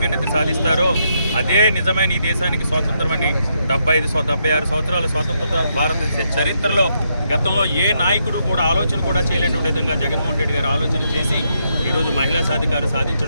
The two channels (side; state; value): both; inverted; correlation -0.78